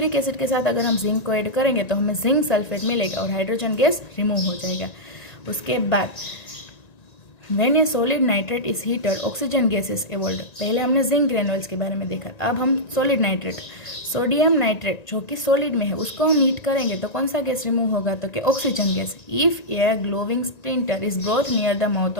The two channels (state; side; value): late; right; 1.9 ms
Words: एसिड के साथ अगर हम जिंक को ऐड करेंगे तो हमें जिंक सल्फेट मिलेगा और हाइड्रोजन गैस रिमूव हो जाएगा। उसके बाद When a solid nitrate is heated, oxygen gas is evolved। पहले हमने जिंक ग्रेनुअल्स के बारे में देखा, अब हम सॉलिड नाइट्रेट, सोडियम नाइट्रेट जो कि सॉलिड में है, उसको हम हीट करेंगे तो कौन सा गैस रिमूव होगा, तो कि oxygen gas. If a glowing splinter is brought near the mouth